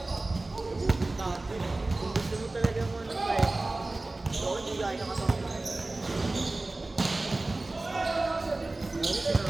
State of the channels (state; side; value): quieter; left; 3.0 dB